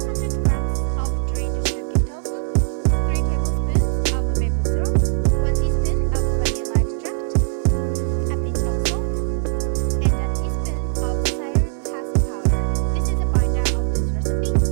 grams of drained silken tofu, 3 tablespoons of maple syrup, 1 teaspoon of vanilla extract, a pinch of salt, and a teaspoon of psyllium husk powder. This is a binder of this recipe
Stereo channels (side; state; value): left; silent; digital silence